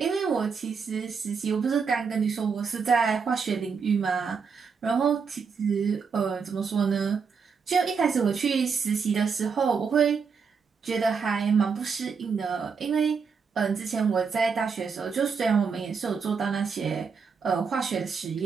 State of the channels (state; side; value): quieter; left; 5.7 dB